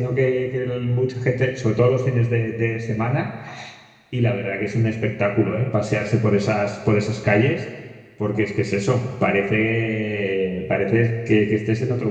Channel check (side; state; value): both; identical; correlation 1.00